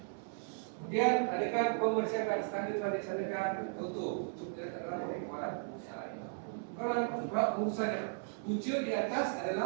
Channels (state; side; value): silent; left; 54 dB below the other